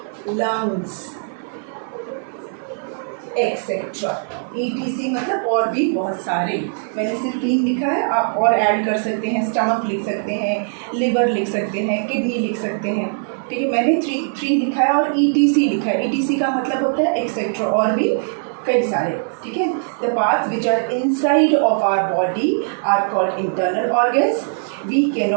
lungs, etcetera. ETC मतलब और भी बहुत सारे. मैंने सिर्फ 3 लिखा है, आप और ऐड कर सकते हैं. स्टमक लिख सकते हैं, लिवर लिख सकते हैं, किडनी लिख सकते हैं. ठीक है, मैंने 3 लिखा है और ETC लिखा है. ETC का मतलब होता है एक्सेट्रा, और भी कई सारे. ठीक है. The parts which are inside of our body are called internal organs. We can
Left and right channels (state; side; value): silent; left; 63 dB below the other